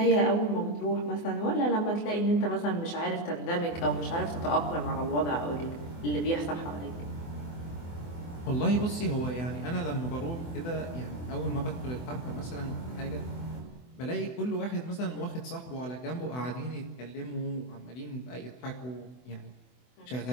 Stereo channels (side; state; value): right; late; 24 ms